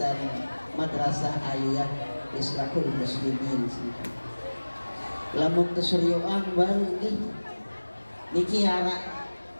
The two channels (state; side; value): inverted; both; correlation -1.00